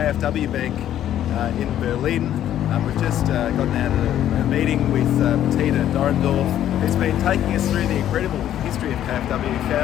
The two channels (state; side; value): quieter; right; 11.4 dB